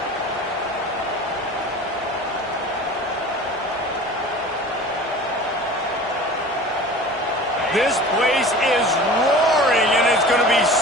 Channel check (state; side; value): normal; both; correlation 0.40